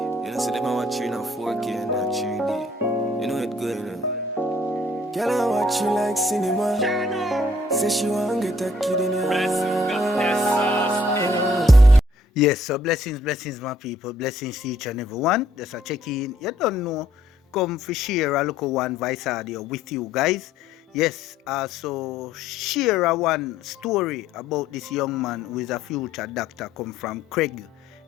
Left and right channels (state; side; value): normal; both; correlation 0.64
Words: know, see them watching on 4K and not 3D. You know it good, you know. Girl, I watch you like cinema. Say she want get a kid in her. Yes, so blessings, my people. Blessings to each and every one. Just a check in. You don't know. Come for share a local one voice audio with you guys. Yes, so share a one story about this young man who is a future doctor come from Craig